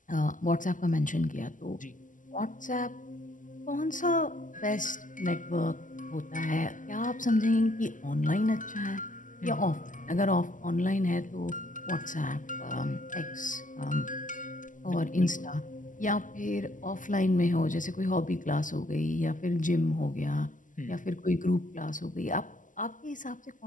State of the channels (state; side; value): late; right; 0.38 ms